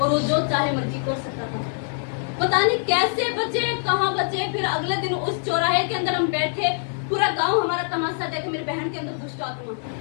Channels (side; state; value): right; silent; 63 dB below the other